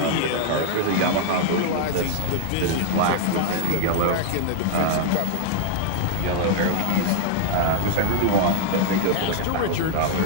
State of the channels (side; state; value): both; different; correlation 0.00